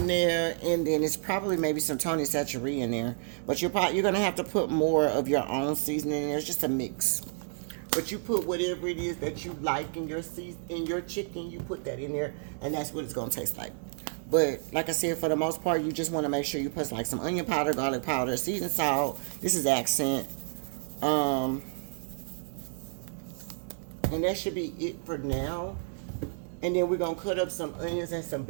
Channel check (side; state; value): left; silent; digital silence